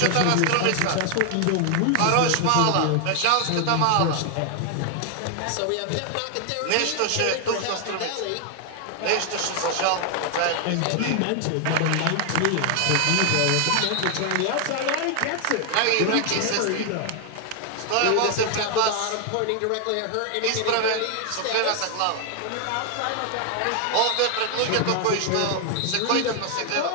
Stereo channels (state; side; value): different; both; correlation 0.00